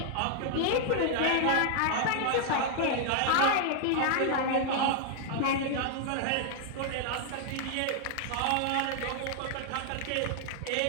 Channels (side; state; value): both; different; correlation 0.00